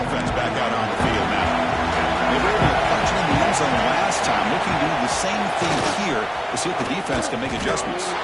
back out on the field now. They were able to punch it in the end zone last time, looking to do the same thing here to see if the defense can make adjustments.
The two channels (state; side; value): identical; both; correlation 1.00